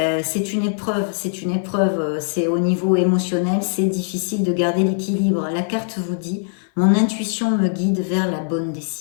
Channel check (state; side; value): silent; right; 56 dB below the other